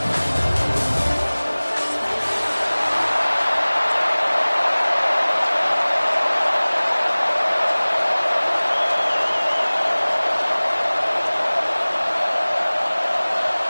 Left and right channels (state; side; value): inverted; both; correlation -1.00